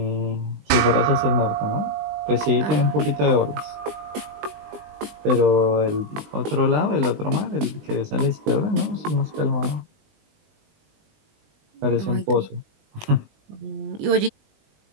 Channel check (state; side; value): late; left; 20 ms